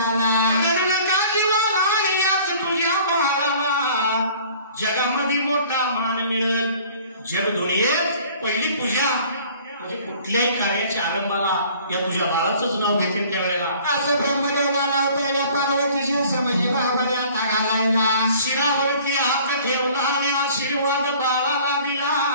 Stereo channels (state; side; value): inverted; both; correlation -0.51